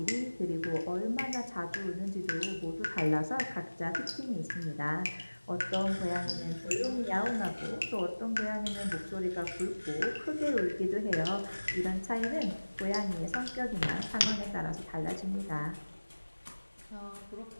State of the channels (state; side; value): inverted; both; correlation -1.00